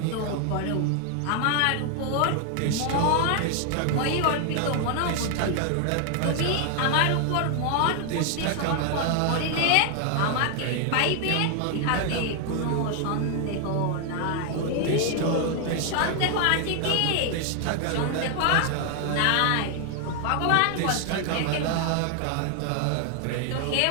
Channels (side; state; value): both; different; correlation 0.00